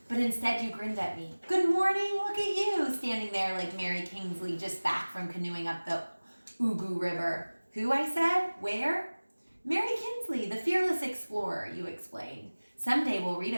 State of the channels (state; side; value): inverted; both; correlation -1.00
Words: But instead you grinned at me. Good morning, look at you, standing there like Mary Kingsley just back from canoeing up the Ugu River. Who, I said? Where? Mary Kingsley, the fearless explorer, you explained. Someday we'll read